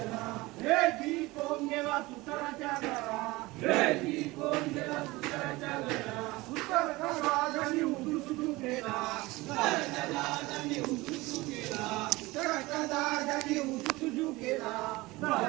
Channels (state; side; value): quieter; left; 21.2 dB